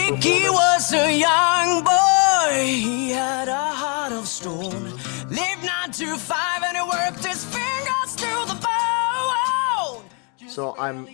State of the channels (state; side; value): quieter; right; 35.8 dB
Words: performance. was a young boy, he had a heart of stone. Lived 9 to 5 and he worked his fingers to the bone. So I'm